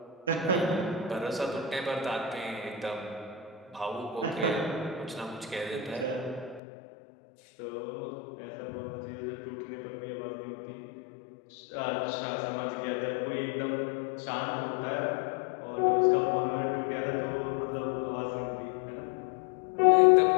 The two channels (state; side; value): drops out; right; at 6.6 s